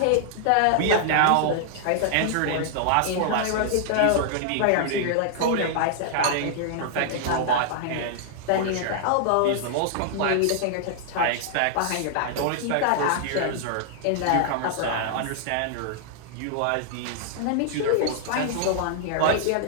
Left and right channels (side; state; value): both; different; correlation -0.01